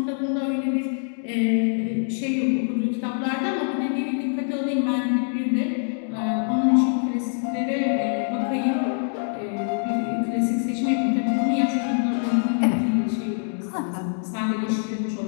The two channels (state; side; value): silent; right; digital silence